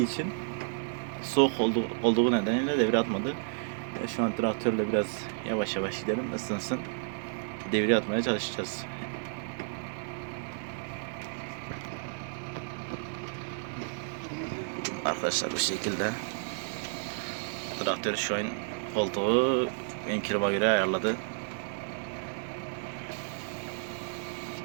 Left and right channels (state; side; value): silent; left; digital silence